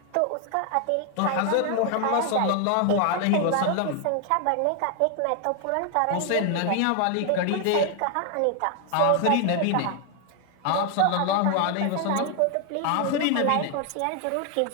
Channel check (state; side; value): different; both; correlation 0.00